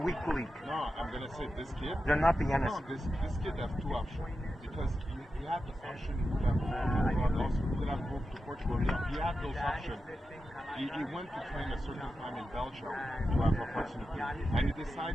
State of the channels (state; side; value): normal; both; correlation 0.90